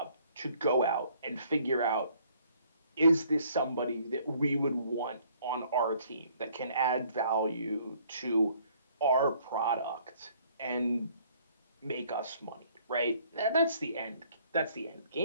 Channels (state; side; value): inverted; both; correlation -0.61